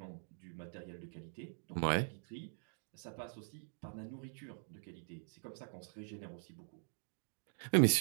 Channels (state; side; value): silent; left; digital silence